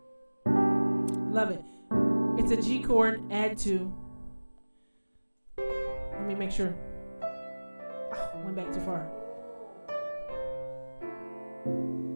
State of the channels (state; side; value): inverted; both; correlation -1.00